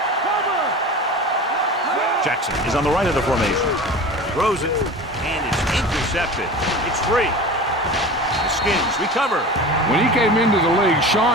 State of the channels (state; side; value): normal; both; correlation 0.35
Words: Jackson is on the right of the formation. Throws it, and it's intercepted. It's free. The Skins recover. When he came into the league,